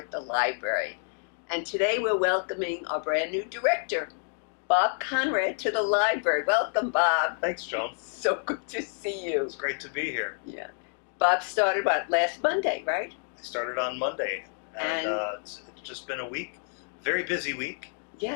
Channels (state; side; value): silent; right; 58 dB below the other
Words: the library. And today we're welcoming our brand new director, Bob Conrad, to the library. Welcome, Bob. Thanks, Joan. So good to see you. It's great to be here. Yeah. Bob started, last Monday, right? I started on Monday, and it's just been a week, very busy week,